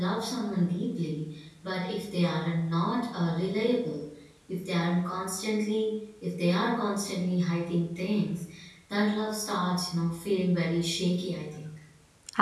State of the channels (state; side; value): identical; both; correlation 1.00